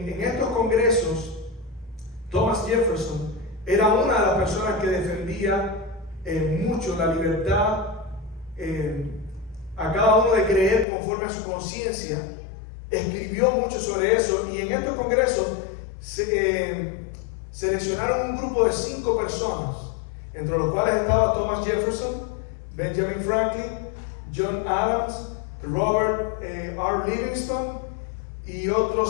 estos congresos, Thomas Jefferson era una de las personas que defendía mucho la libertad a cada uno de creer conforme a su conciencia. Escribió mucho sobre eso, y en estos congresos seleccionaron un grupo de 5 personas, entre los cuales estaba Thomas Jefferson, Benjamin Franklin, John Adams, Robert R. Livingston y otro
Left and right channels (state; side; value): drops out; right; at 10.9 s